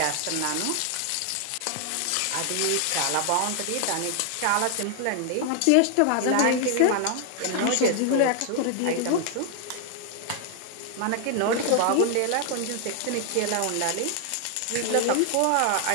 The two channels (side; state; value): both; different; correlation 0.00